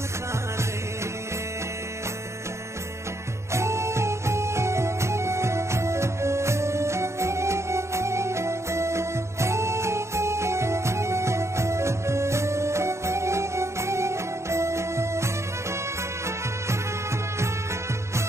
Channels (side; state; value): left; late; 0.14 ms